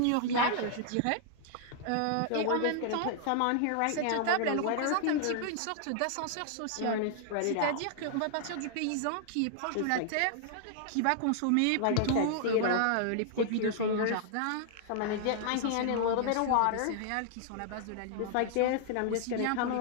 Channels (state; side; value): different; both; correlation 0.00